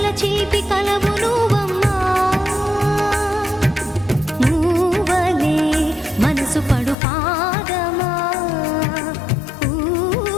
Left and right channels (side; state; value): right; drops out; at 7.0 s